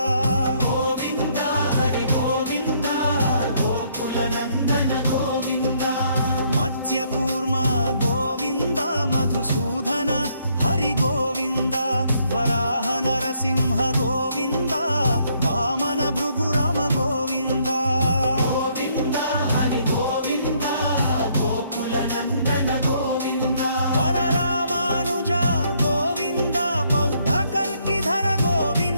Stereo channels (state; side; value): inverted; both; correlation -0.69